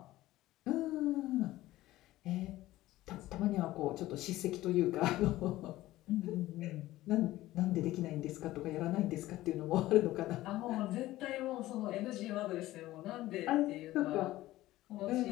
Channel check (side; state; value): right; quieter; 16.3 dB